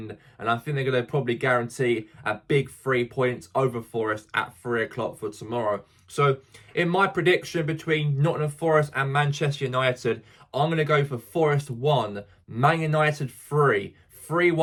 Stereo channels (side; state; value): both; identical; correlation 1.00